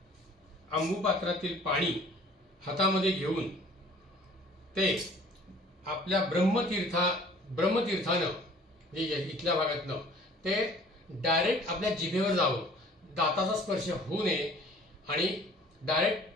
अंबुपात्रातील पाणी हातामध्ये घेऊन ते आपल्या ब्रह्मतीर्थानं इथल्या भागातनं ते डायरेक्ट आपल्या जिभेवर जावं, दाताचा स्पर्श होऊ नये आणि डायरेक्ट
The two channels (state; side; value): normal; both; correlation 0.52